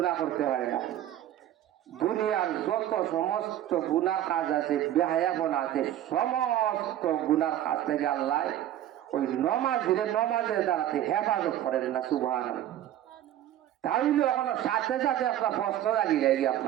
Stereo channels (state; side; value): quieter; left; 12.1 dB